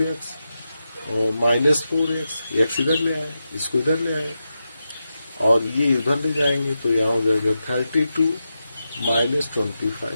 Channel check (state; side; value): inverted; both; correlation -0.89